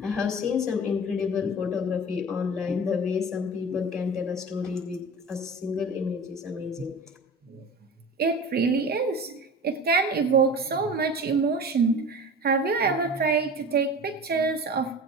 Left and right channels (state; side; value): normal; both; correlation 0.35